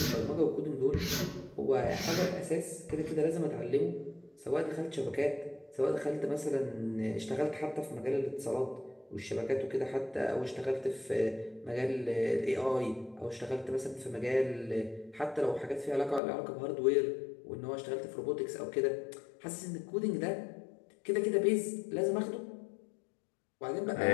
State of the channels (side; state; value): right; drops out; at 16.2 s